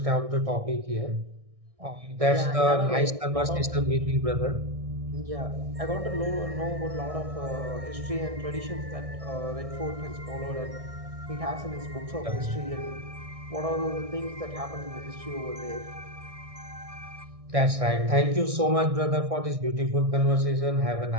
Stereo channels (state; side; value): late; left; 1.6 ms